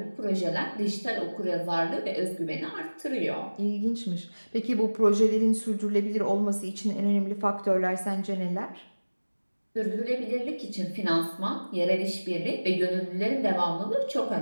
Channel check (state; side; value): inverted; both; correlation -1.00